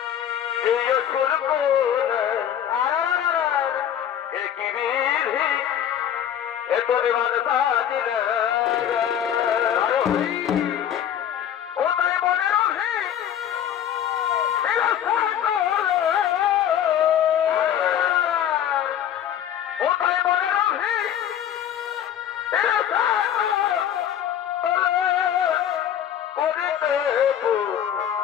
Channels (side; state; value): right; quieter; 9.9 dB